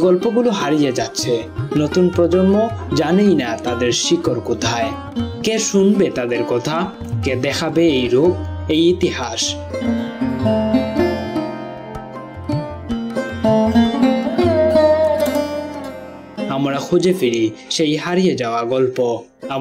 গল্পগুলো হারিয়ে যাচ্ছে, নতুন প্রজন্ম জানেই না তাদের শিকড় কোথায়। কে শুনবে তাদের কথা? কে দেখাবে এই রূপ, এই ইতিহাস? আমরা খুঁজে ফিরি সেই হারিয়ে যাওয়া গল্প,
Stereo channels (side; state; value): both; identical; correlation 1.00